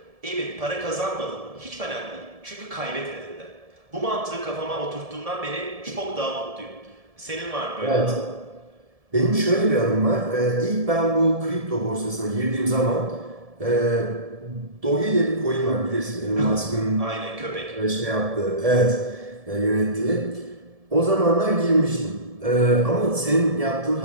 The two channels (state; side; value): late; left; 1.7 ms